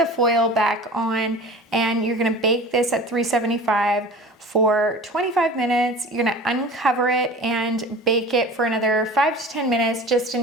foil back on, and you're gonna bake this at 375 for 25 minutes. You're gonna uncover it and bake it for another 5 to 10 minutes, just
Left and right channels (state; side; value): normal; both; correlation 0.39